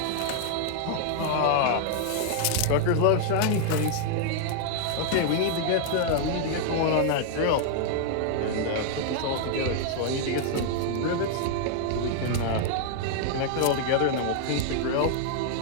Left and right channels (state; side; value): different; both; correlation 0.00